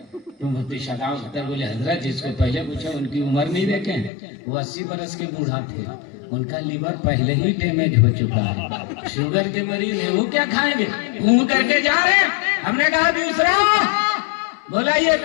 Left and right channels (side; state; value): right; drops out; at 4.1 s